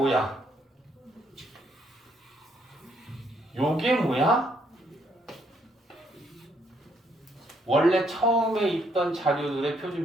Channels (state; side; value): normal; both; correlation 0.71